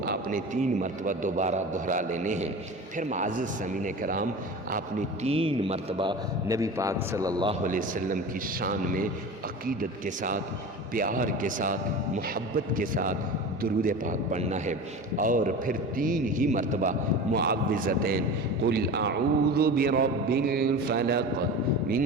آپ نے 3 مرتبہ دوبارہ دہرا لینے ہیں۔ پھر معزز سامعین کرام، آپ نے 3 مرتبہ نبی پاک صلی اللہ علیہ وسلم کی شان میں عقیدت کے ساتھ، پیار کے ساتھ، محبت کے ساتھ درود پاک پڑھنا ہے، اور پھر 3 ہی مرتبہ معوذتین، قل اعوذ برب الفلق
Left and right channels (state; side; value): normal; both; correlation 0.32